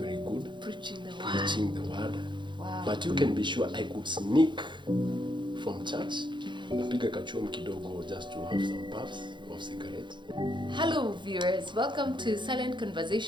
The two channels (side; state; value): left; late; 0.23 ms